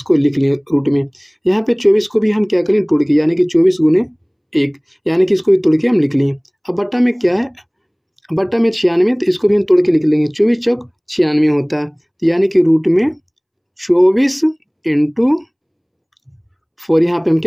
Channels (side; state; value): both; identical; correlation 1.00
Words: लिख लिए रूट में। यहाँ पे 24 को भी हम क्या करें, तोड़ के, यानी कि 24 गुने 1, यानी कि इसको भी तोड़ के हम लिख लिए। अब बट्टा में क्या है, बट्टा में 96, तो इसको भी हम तोड़ के लिख लेंगे, 24 चौक 96 होता है, यानी कि रूट में 24 इंटू 4, यहाँ पे हम